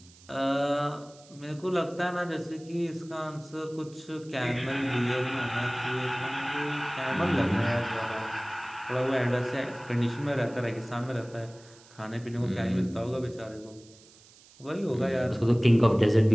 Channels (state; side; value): noise; right; hiss, 25 dB below the sound